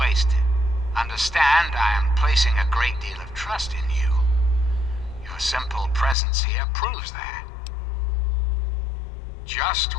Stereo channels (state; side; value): drops out; right; at 6.2 s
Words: Understand, I am placing a great deal of trust in you. Your simple presence here proves that. Just